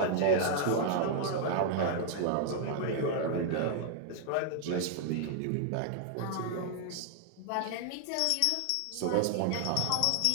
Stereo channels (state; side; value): different; both; correlation 0.00